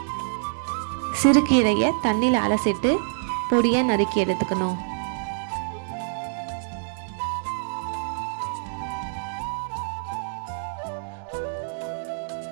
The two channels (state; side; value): silent; left; digital silence